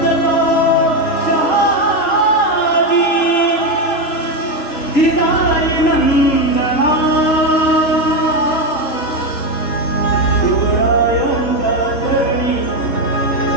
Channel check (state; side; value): late; right; 3.8 ms